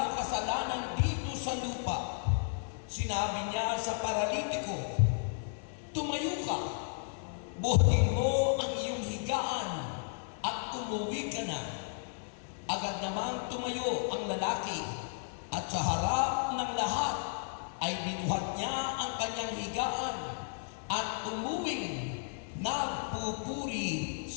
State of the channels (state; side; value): silent; right; digital silence